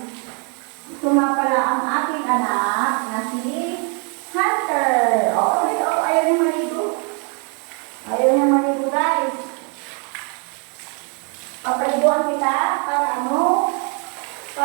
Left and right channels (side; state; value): left; quieter; 36.8 dB